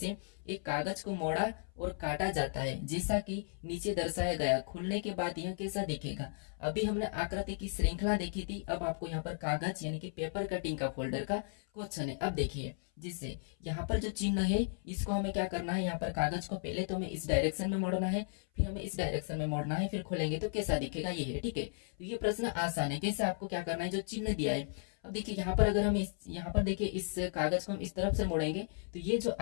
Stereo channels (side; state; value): right; silent; 54 dB below the other